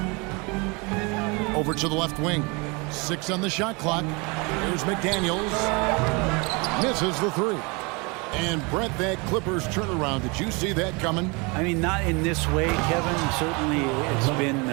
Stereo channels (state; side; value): quieter; left; 28.8 dB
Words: Over to the left wing. 6 on the shot clock. Here's McDaniels. Misses the 3. And Brett, that Clippers turnaround, did you see that coming? I mean, not in this way, Kevin. Certainly it's been